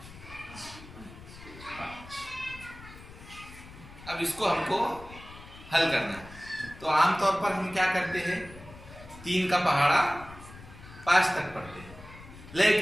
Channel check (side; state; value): left; noise; rumble, 17 dB below the sound